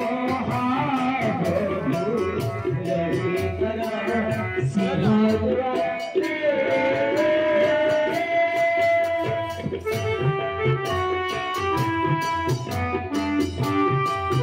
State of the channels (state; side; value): identical; both; correlation 1.00